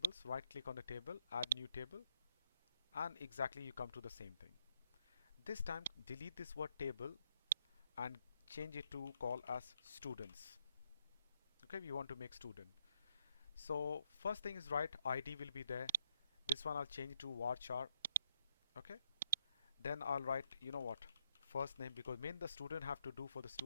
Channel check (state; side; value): inverted; both; correlation -0.76